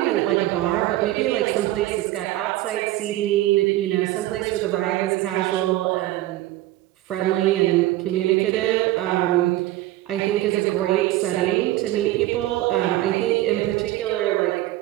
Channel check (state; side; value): quieter; left; 16.0 dB